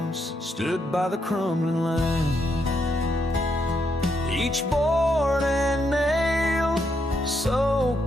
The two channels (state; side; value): normal; both; correlation 0.78